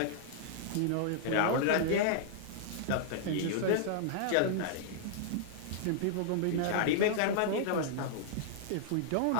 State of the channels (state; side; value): different; both; correlation -0.01